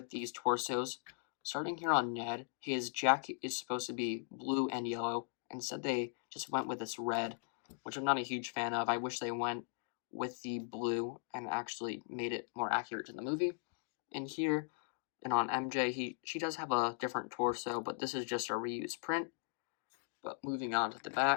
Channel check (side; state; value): right; silent; digital silence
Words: these torsos. Starting here on Ned, his jacket is supposed to be blue and yellow. Instead they just went with this red, which I'm not a huge fan of. I wish they went with the blue and actually made it more accurate to the movie. And here, and on MJ, she does have a different torso, but this is just a reused print. But moving on to the